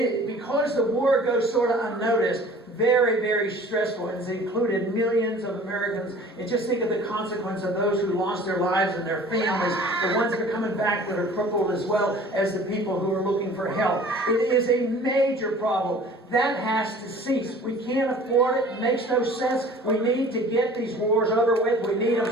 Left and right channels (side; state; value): both; normal; correlation 0.47